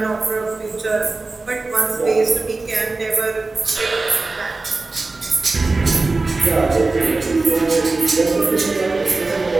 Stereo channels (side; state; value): left; quieter; 3.5 dB